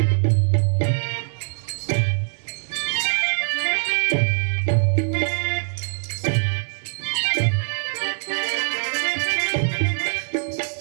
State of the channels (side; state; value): left; silent; digital silence